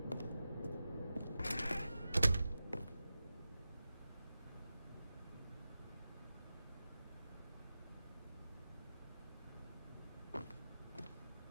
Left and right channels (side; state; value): both; inverted; correlation -0.93